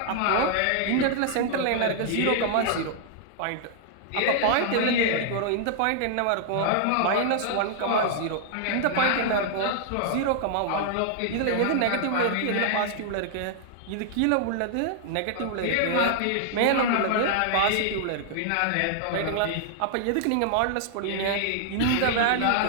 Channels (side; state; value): both; different; correlation -0.01